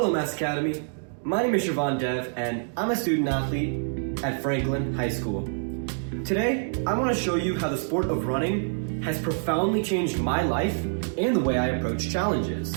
Mass Academy. My name is Shravan and I'm a student athlete at Franklin High School. Today, I want to show you how the sport of running has profoundly changed my life and the way I approach challenges.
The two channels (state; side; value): silent; left; digital silence